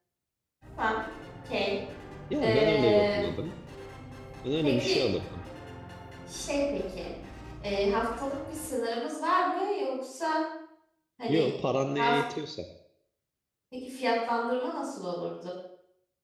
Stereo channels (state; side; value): identical; both; correlation 1.00